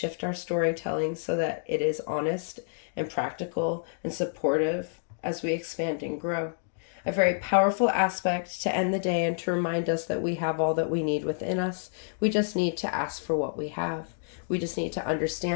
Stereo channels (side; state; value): right; silent; digital silence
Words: our storytelling so that it is honest and practical and supportive as we expand and grow. A very powerful aspect to end the day and to remind us that we have all that we need within us. We just need to ask for what we have. We just need to